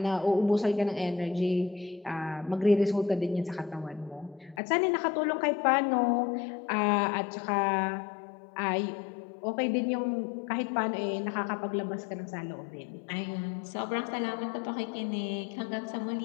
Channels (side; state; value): right; drops out; at 4.6 s